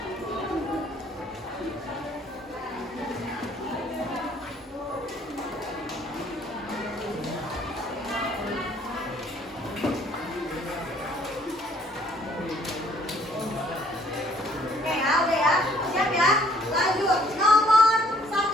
Oke ya, udah ya. Siap ya? Lanjut. Nomor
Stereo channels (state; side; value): normal; both; correlation 0.61